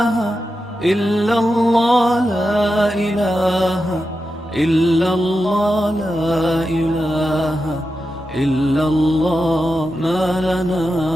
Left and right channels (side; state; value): both; normal; correlation 0.89